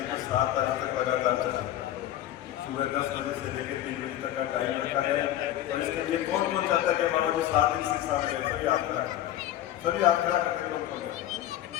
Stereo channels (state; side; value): quieter; right; 12.8 dB